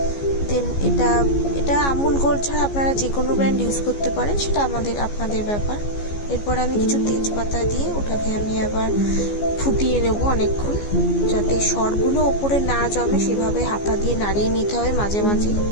দেন এটা আমুল গোল্ড ছাড়া আপনারা যে কোনো ব্র্যান্ড ইউজ করতে পারেন, সেটা আপনাদের ব্যাপার। এরপর আমি কিছু তেজপাতা দিয়ে ওটাকে আমি আবার ফুটিয়ে নেব অনেকক্ষণ, যাতে সরগুলো ওপরে না জমে সেভাবে হাতা দিয়ে নাড়িয়ে নিতে হবে মাঝে মাঝে।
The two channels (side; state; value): right; late; 14 ms